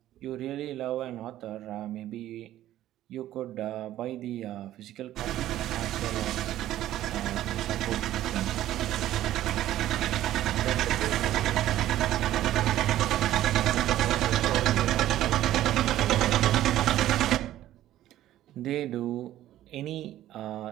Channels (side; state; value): left; quieter; 13.5 dB